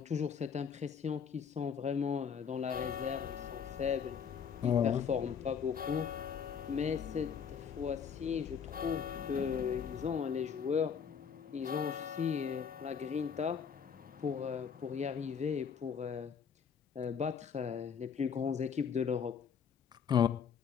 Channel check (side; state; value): right; quieter; 6.9 dB